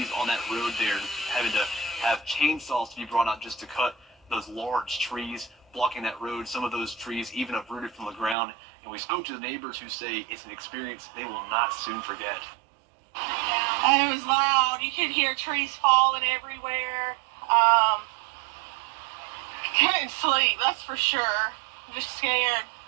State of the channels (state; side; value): drops out; left; at 8.3 s